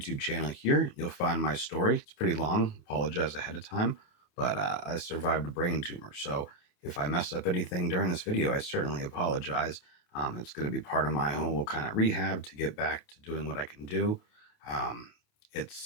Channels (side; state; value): right; late; 28 ms